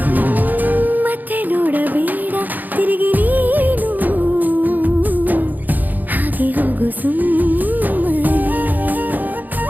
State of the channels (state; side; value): late; left; 0.084 ms